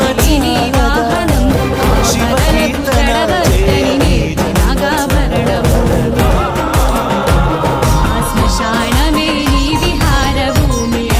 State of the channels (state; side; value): identical; both; correlation 1.00